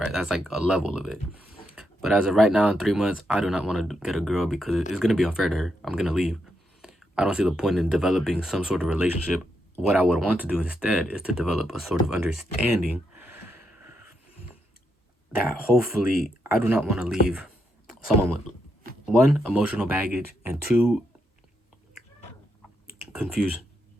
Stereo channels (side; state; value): both; normal; correlation 0.81